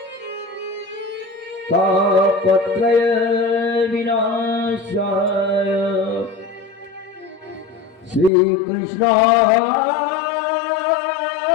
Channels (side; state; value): right; drops out; at 8.3 s